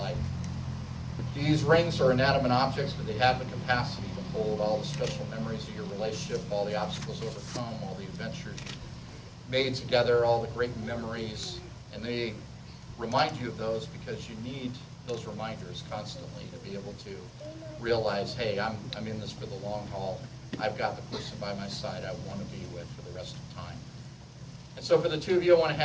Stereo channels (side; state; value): both; identical; correlation 1.00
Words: These rings are inanimate objects, but they have the capacity to hold all the special memories of your relationship, all the obstacles overcome, all the adventures you made together, all the great memories, and they remind you of those because you need those reminders constantly to be able to realize, hey, I'm in this for the long haul. I've got the person by my side I want to be with for the rest of time. And so for the two of you, I want to